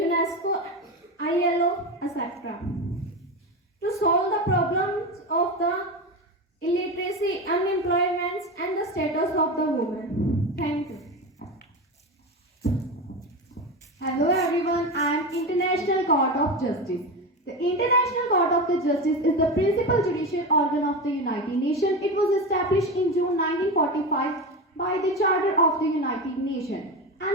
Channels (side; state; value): both; normal; correlation 0.21